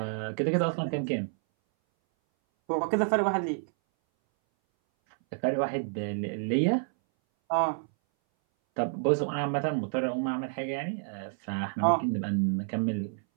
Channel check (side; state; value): left; silent; 58 dB below the other